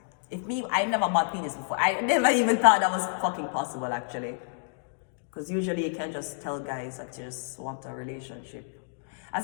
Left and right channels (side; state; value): right; silent; digital silence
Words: If me, I never bought penis before. I never even thought that was fucking possible actually. Because usually you can't just tell guys that you just want a relationship.